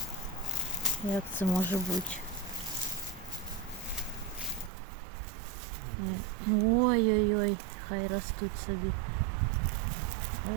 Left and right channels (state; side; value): drops out; left; at 4.7 s